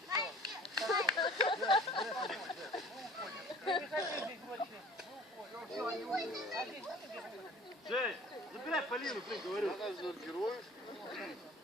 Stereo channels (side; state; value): both; normal; correlation 0.47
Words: Я не хочу здесь больше. Жень, забирай Полину, блин, говорю. Она же героев.